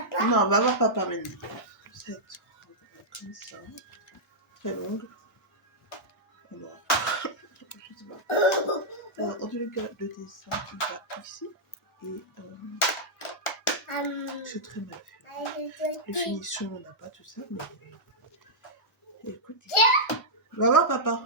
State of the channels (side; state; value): both; normal; correlation -0.09